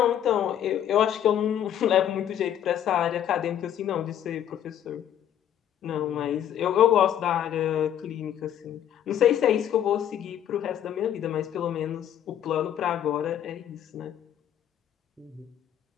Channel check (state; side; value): quieter; right; 10.3 dB